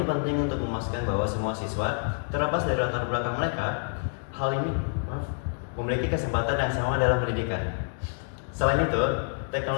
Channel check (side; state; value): right; silent; digital silence